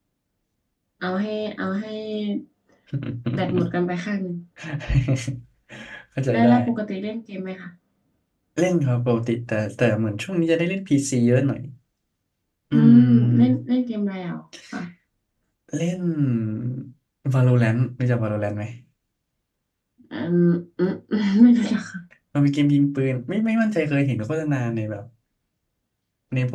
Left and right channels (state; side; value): identical; both; correlation 1.00